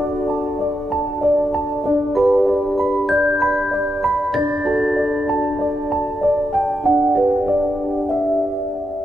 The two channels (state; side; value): normal; both; correlation 0.85